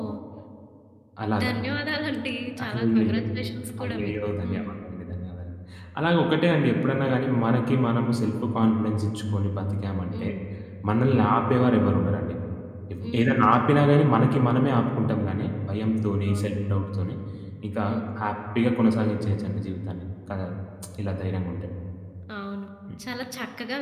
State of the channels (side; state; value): both; identical; correlation 1.00